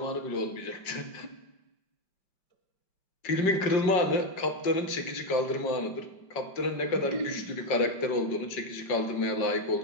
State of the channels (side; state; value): right; late; 5.2 ms